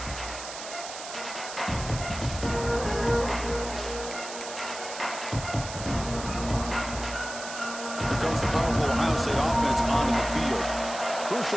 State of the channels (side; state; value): right; noise; hiss, 10 dB below the sound